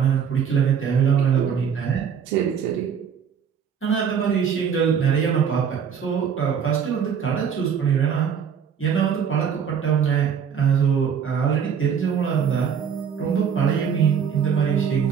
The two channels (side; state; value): left; quieter; 7.4 dB